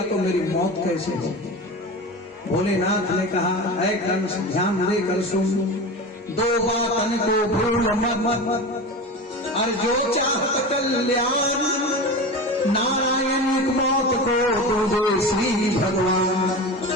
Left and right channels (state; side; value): normal; both; correlation 0.28